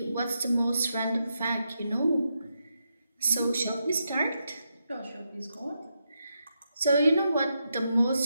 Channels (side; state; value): both; inverted; correlation -0.84